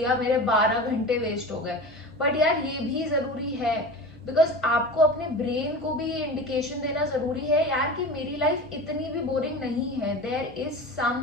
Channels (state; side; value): normal; both; correlation 0.32